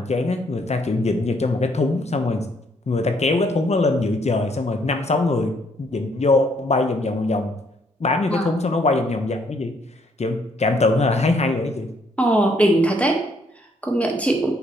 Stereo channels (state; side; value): normal; both; correlation 0.68